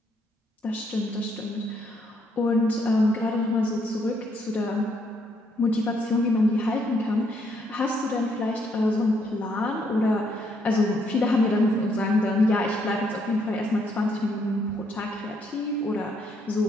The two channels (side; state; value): both; normal; correlation 0.72